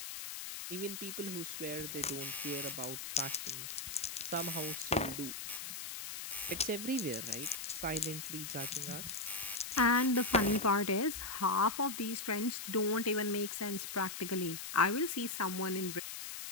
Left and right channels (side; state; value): left; noise; hiss, 7 dB below the sound